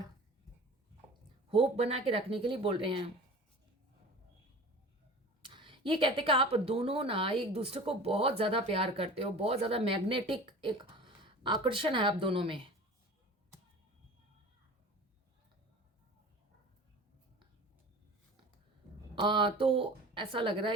hope बना के रखने के लिए बोल रहे हैं। ये कहते कि आप दोनों ना एक दूसरे को बहुत ज़्यादा प्यार करते हो, बहुत ज़्यादा मैग्नेटिक एक आकर्षण है आप दोनों में। तो ऐसा लग रहा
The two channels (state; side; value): normal; both; correlation 0.39